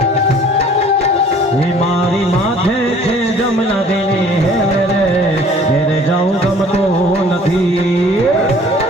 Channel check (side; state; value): both; normal; correlation 0.53